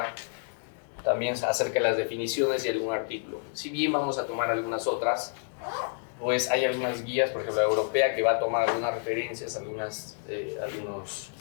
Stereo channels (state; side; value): silent; right; 58 dB below the other